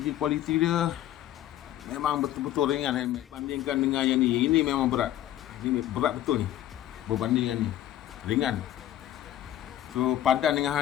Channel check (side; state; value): right; quieter; 12.6 dB